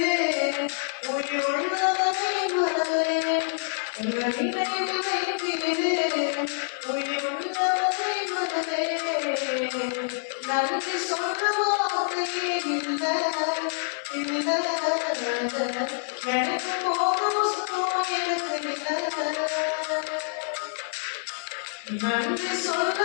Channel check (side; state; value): right; silent; digital silence